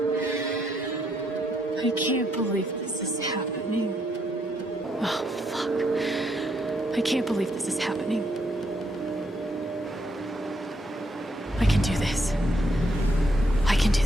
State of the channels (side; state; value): both; normal; correlation 0.75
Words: I can't believe this is happening. Oh, fuck. I can't believe this is happening. I can do this. I can do